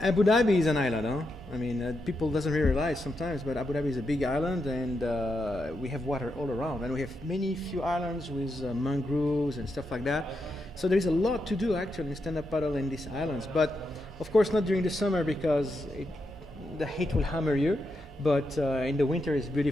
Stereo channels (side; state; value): both; normal; correlation 0.84